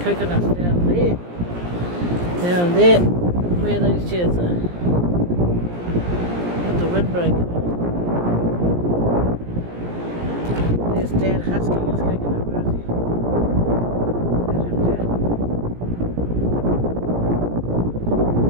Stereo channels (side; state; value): left; late; 17 ms